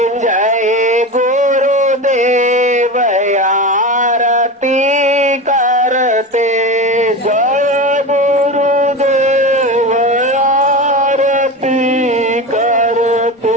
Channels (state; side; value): normal; both; correlation 0.25